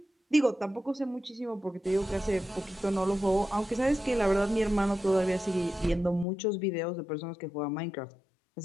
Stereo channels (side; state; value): right; drops out; at 6.2 s